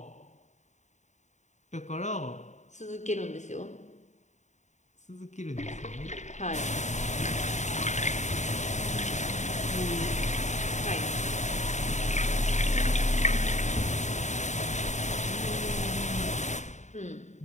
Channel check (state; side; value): late; right; 0.34 ms